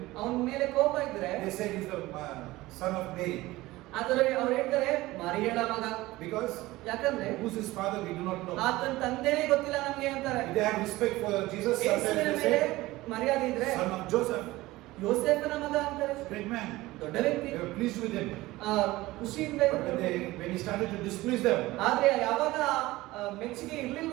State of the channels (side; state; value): left; quieter; 18.6 dB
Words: ಅವನ ಮೇಲೆ ಕೋಪ ಇದ್ರೆ they said he's the son of Mary. ಆದರೆ ಅವ್ರು ಹೇಳ್ತಾರೆ ಮರಿಯಳ ಮಗ. Because ಯಾಕಂದ್ರೆ who's his father we do not know. ಆತನ ತಂದೆನೇ ಗೊತ್ತಿಲ್ಲ ನಮ್ಗೆ ಅಂತಾರೆ. If they have respect for Jesus, sometimes ಯೇಸುವಿನ they ಮೇಲೆ say ಮರ್ಯಾದೆ ಇದ್ರೆ son of Joseph, ಯೋಸೇಫನ ಮಗ ಅಂತಾರೆ. great man. ದೊಡ್ಡ ವ್ಯಕ್ತಿ. They were pleased with him. ಖುಷಿಯಿಂದ But when he started to displease them, ಆದ್ರೆ ಯಾವಾಗ ಮೆಚ್ಚುಗೆ